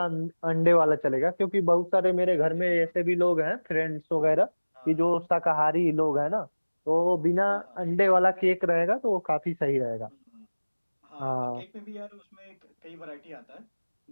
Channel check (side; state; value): both; inverted; correlation -1.00